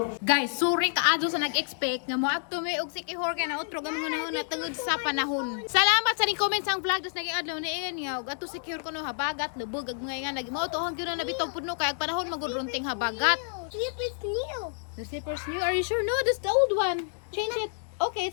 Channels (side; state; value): right; silent; digital silence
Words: Guys, sorry kaadto sa nag-expect nga mo adto may og sikihor kay na utro gamon na tungod sa panahon. Salamat sa ning comments ang vlog dos naging adlaw ni ingan nga og adto sikihor kuno habagat lubog ag mga nga nagimo to hang gyud na bitaw pudno kay ag panahon magudrunting habagat. Sleep is new. The slippers new. Are you sure? No, that's the old one. Change it. Okay,